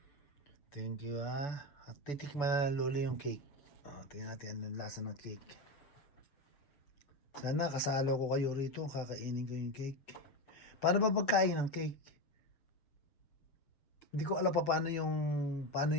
Thank you, At titikman na ng lolo yung cake. Tingnan natin anong lasa ng cake. Sana kasalo ko kayo rito, kakainin ko yung cake. Paano ba pagkain ng cake? Hindi ko alam pa paano yung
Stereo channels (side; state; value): right; late; 7.4 ms